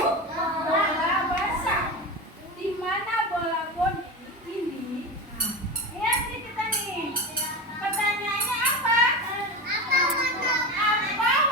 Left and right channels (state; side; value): normal; both; correlation 0.24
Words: Bola basah. Di mana bola boni ini? Nah, lihat nih kita nih. Pertanyaannya apa? Apa